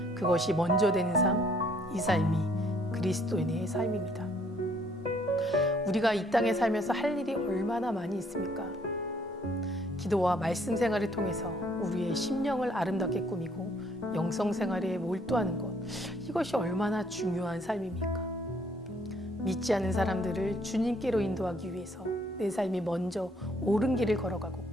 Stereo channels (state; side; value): normal; both; correlation 0.64